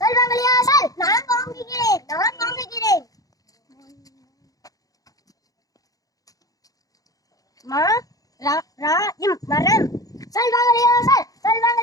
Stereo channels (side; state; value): right; late; 0.17 ms